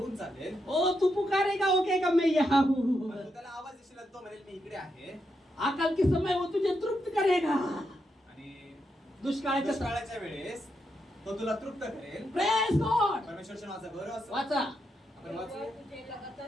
चालेल. ओ तू पुकारेगा वो कहेगा मैं यहाँ हूँ. पण तू त्याला आवाज देशील आणि तो म्हणेल मी इकडे आहे. आकल के समय वो तुझे तृप्त करेगा. आणि दुष्काळाच्या दुष्काळाच्या वेळेस तो तुला तृप्त करेल. Praise God. परमेश्वरच्या नावाचा गौरव असो. वाचा. आपण वाचूया. तुझे लगातार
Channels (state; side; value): normal; both; correlation 0.83